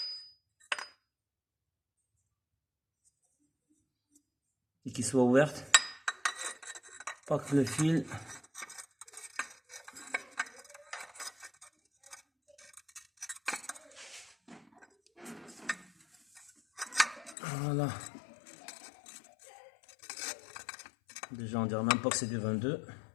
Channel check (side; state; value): right; drops out; at 17.4 s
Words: Et qui soit ouverte. Pas que le fil. Voilà. Déjà on dirait même pas que c'est du 22.